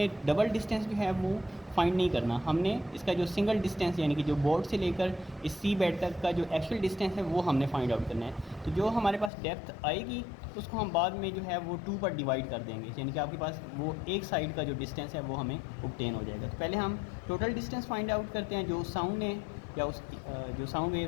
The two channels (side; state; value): right; drops out; at 9.3 s